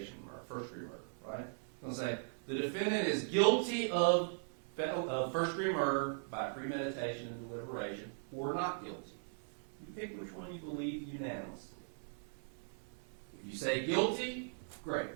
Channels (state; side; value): silent; left; 52 dB below the other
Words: murder, first-degree murder, right? It's going to say the defendant is guilty of first-degree murder by premeditation and deliberation or not guilty. You pick which one you believe unanimously. If you say guilty, great.